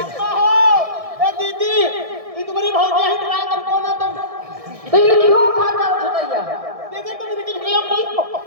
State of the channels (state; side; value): late; left; 1.6 ms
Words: अम्मा हो, ए दीदी, ये तुम्हारी भौजिया ही ट्राई कर कौन है तुम? तो ये क्यों खाता चटैया? दीदी तुम इनकी झुरिया बोल।